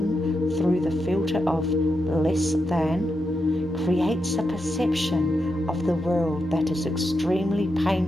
through the filter of less than creates a perception of the world that is extremely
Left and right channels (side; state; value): left; noise; rumble, 29 dB below the sound